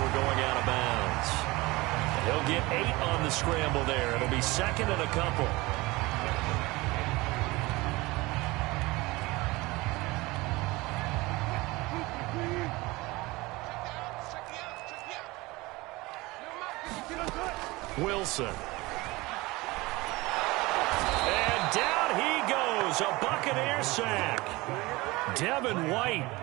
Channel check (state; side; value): quieter; left; 21.8 dB